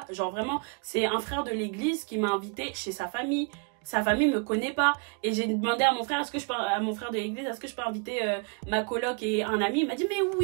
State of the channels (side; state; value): left; quieter; 35.7 dB